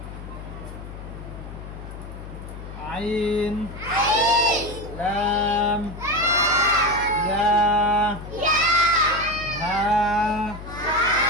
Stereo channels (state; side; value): noise; left; hum, 12 dB below the sound